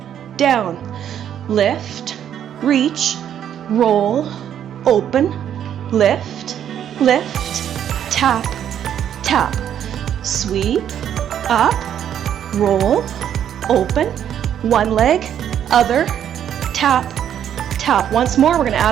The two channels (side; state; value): left; quieter; 9.7 dB